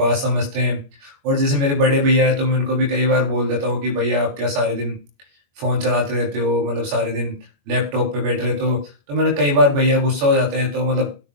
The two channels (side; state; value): left; late; 21 ms